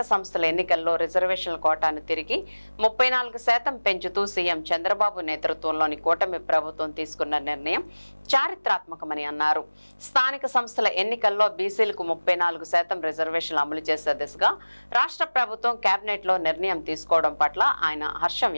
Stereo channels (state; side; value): inverted; both; correlation -1.00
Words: సంస్థల ఎన్నికల్లో రిజర్వేషన్ల కోటాను తిరిగి 34% పెంచుతూ సీఎం చంద్రబాబు నేతృత్వంలోని కూటమి ప్రభుత్వం తీసుకున్న నిర్ణయం చారిత్రాత్మకమని అన్నారు. స్థానిక సంస్థల ఎన్నికల్లో బీసీలకు 34% రిజర్వేషన్లు అమలు చేసే దిశగా రాష్ట్ర ప్రభుత్వం కేబినెట్ లో నిర్ణయం తీసుకోవడం పట్ల ఆయన హర్షం